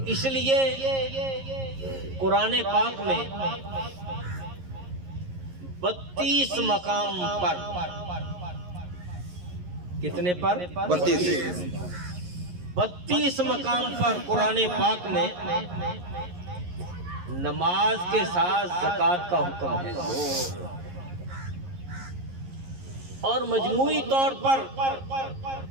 اس لیے قرآن پاک میں 32 مقام پر، کتنے پر؟ 32 مقام پر قرآن پاک میں نماز کے ساتھ زکوٰۃ کا حکم ہے، اور مجموعی طور پر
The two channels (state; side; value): late; left; 11 ms